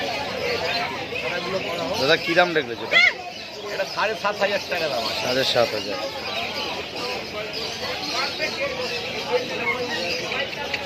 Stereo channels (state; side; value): identical; both; correlation 1.00